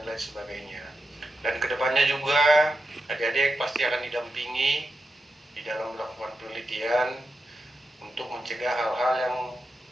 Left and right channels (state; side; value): normal; both; correlation 0.88